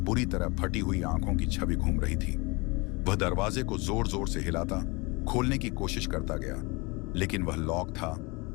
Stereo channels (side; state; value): right; quieter; 26.9 dB